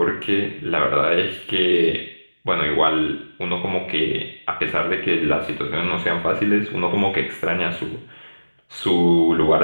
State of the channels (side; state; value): both; inverted; correlation -1.00